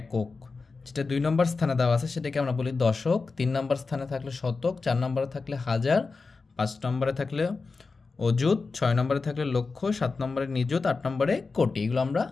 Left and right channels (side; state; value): right; quieter; 4.3 dB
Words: যেটা 2 নম্বর স্থানে দেওয়া আছে সেটাকে আমরা বলি দশক, 3 নম্বর স্থানে থাকলে শতক, 4 নম্বরে থাকলে হাজার, 5 নম্বরে থাকলে অযুত, 6 নম্বরে থাকলে লক্ষ, 7 নম্বরে নিযুত, 8 নম্বরে কোটি। এগুলো আমরা